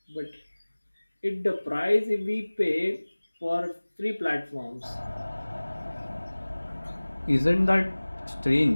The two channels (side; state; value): both; inverted; correlation -1.00